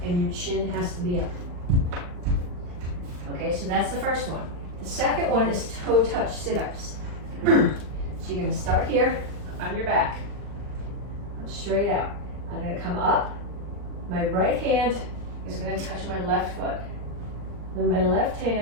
and your chin has to be up. Okay, so that's the first one. The second one is toe touch sit-ups. So you're going to start here on your back. Come straight out. I'm going to come up. My right hand is going to touch my left foot. Then my left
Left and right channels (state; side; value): late; left; 39 ms